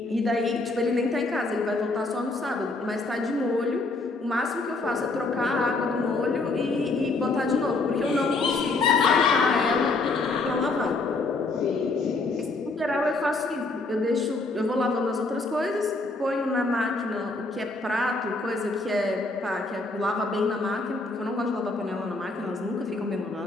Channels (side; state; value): right; quieter; 3.4 dB